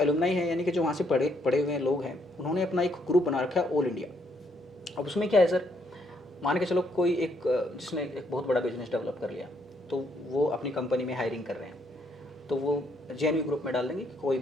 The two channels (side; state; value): both; normal; correlation 0.72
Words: हैं, यानी कि जो वहाँ से पढ़े पढ़े हुए लोग हैं, उन्होंने अपना एक ग्रुप बना रखा है ऑल इंडिया। अब उसमें क्या है सर, मान के चलो कोई एक जिसने एक बहुत बड़ा बिजनेस डेवलप कर लिया, तो वो अपनी कंपनी में हायरिंग कर रहे हैं, तो वो जेएनवी ग्रुप में डाल देंगे कि कोई